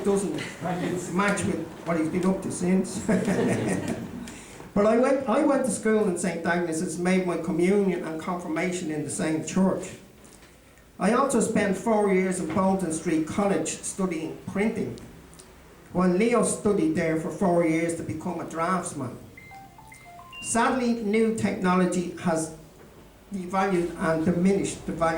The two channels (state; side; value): identical; both; correlation 1.00